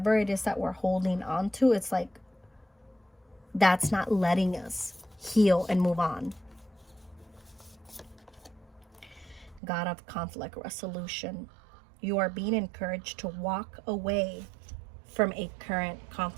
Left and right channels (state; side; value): drops out; left; at 9.6 s